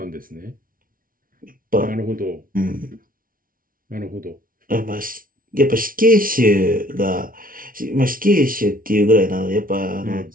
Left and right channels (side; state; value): left; late; 0.41 ms